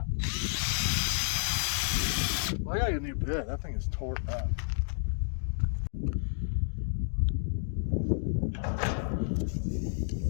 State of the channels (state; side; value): silent; right; digital silence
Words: Well, I gotta get a new bit. That thing is tore up.